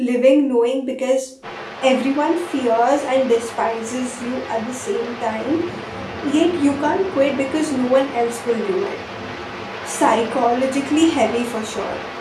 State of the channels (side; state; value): both; identical; correlation 1.00